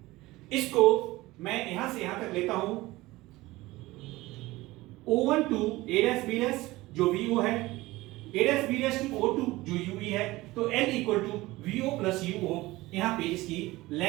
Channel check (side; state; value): left; quieter; 19.3 dB